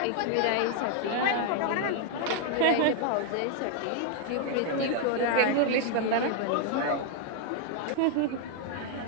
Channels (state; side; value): different; both; correlation 0.00